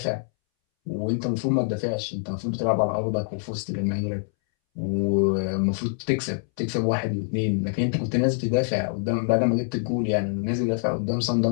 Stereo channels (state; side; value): silent; right; 62 dB below the other